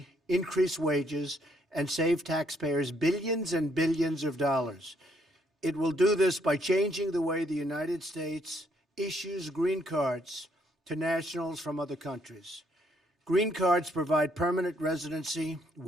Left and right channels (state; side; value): normal; both; correlation 0.70